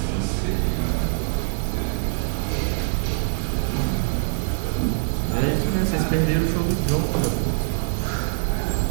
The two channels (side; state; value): left; silent; digital silence